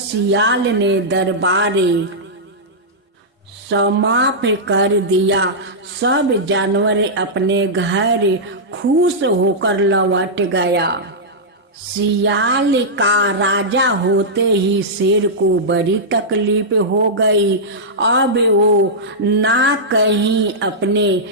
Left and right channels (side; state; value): both; normal; correlation -0.11